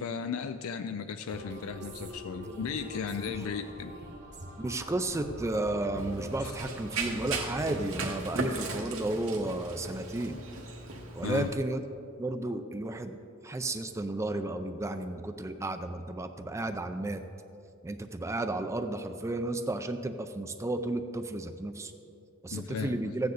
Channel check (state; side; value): normal; both; correlation 0.58